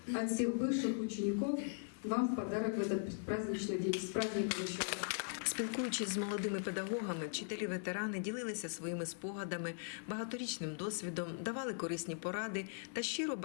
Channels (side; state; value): right; silent; 51 dB below the other